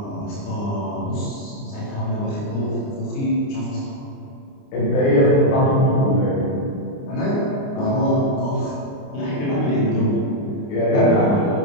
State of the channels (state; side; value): late; right; 29 ms